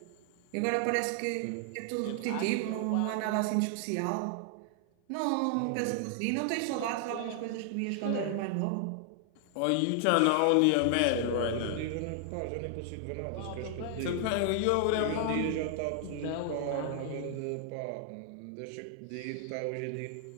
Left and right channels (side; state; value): both; different; correlation 0.00